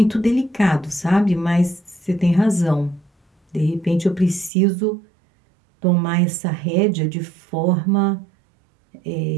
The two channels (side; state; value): left; drops out; at 4.5 s